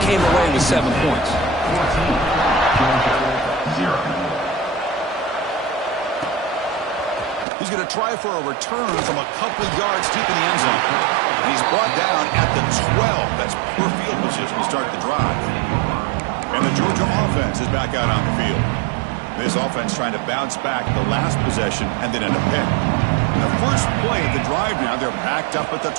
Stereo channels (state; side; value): drops out; left; at 7.5 s